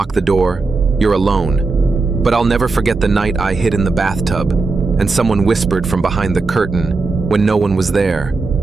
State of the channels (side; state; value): left; quieter; 3.9 dB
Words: the door, you're alone. But I'll never forget the night I hid in the bathtub and someone whispered from behind the curtain when no one was there.